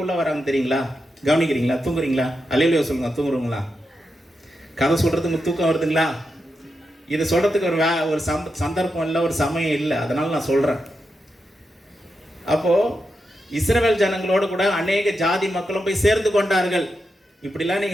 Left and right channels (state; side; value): normal; both; correlation 0.86